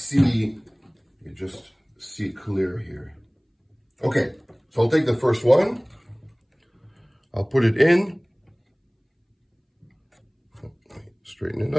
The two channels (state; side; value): identical; both; correlation 1.00